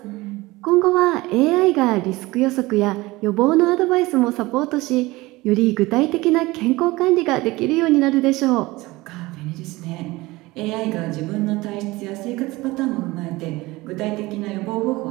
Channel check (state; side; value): quieter; left; 20.6 dB